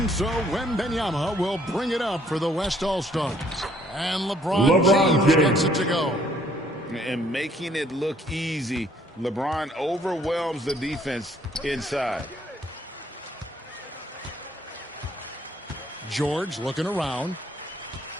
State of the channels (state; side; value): normal; both; correlation 0.64